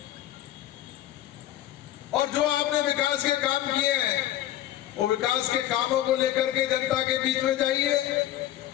और जो आपने विकास के काम किए हैं, वो विकास के कामों को लेकर के जनता के बीच में जाइए।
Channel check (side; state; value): right; quieter; 13.3 dB